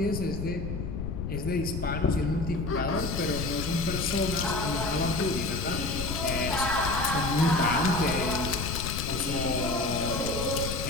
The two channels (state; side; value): noise; left; rumble, 4 dB below the sound